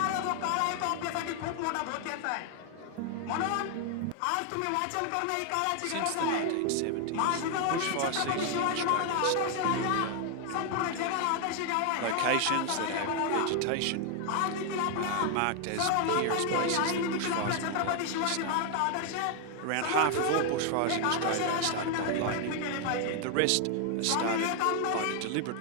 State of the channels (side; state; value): both; different; correlation 0.01